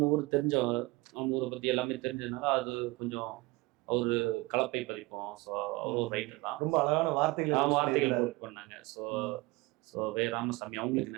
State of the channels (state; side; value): quieter; left; 22.6 dB